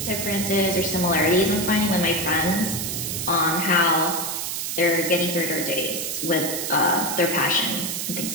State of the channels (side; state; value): right; noise; hiss, 3 dB below the sound